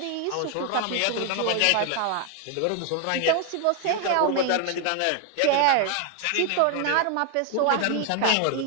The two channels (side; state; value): both; different; correlation 0.00